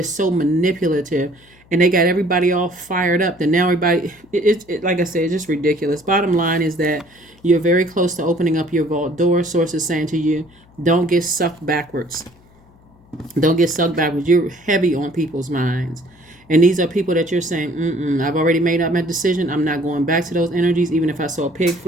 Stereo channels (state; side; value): noise; left; hum, 29 dB below the sound